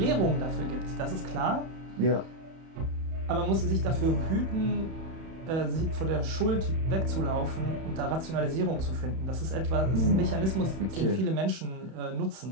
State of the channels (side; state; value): left; late; 31 ms